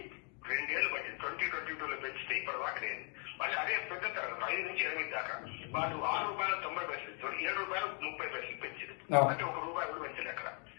2 ఏళ్లు పట్టింది. 2022లో పెంచితే ఇప్పటి దాకా లేదు. మళ్ళీ అదే పెద్ద తరగతి 5 నుంచి 8 దాకా వాళ్ళు 6 రూపాయల 90 పైసలు ఇస్తారు, 7 రూపాయల 30 పైసలు పెంచారు. అంటే 1 రూపాయి కూడా పెంచలేదు అక్కడ.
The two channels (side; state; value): right; quieter; 38.6 dB